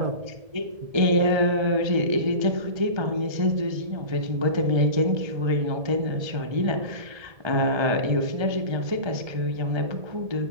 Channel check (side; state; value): left; late; 1.3 ms